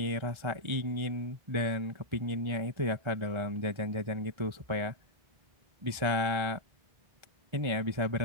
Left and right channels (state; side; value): late; left; 1.4 ms